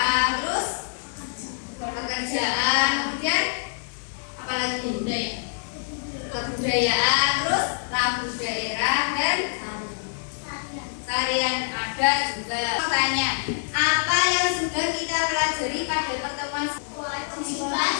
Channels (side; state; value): right; silent; digital silence